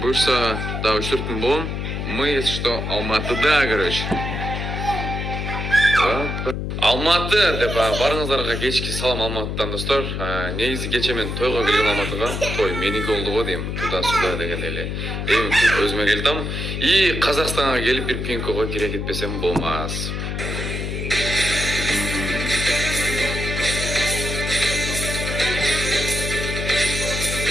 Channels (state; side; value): noise; left; hum, 3 dB below the sound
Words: буюрса да 3-4 күн болом. Мы, если что, Алматыда, короче. Алматы деп барыңыздарга кечки салам Алматыдан достор. Негизи кече мен тойго келген Алматыга. Той меники болду го дейм. Туда-сюда деген эле. Эми түп өзүмө келдим. И Казакстанга келип бир пинкого кире кетпесем болмас.